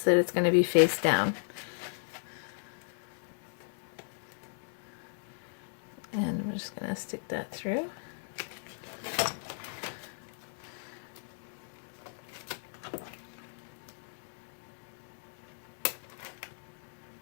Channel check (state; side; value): silent; right; digital silence